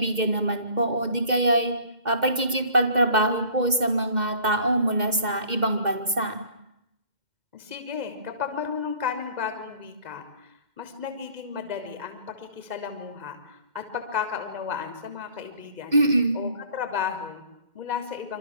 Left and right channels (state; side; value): late; left; 2.1 ms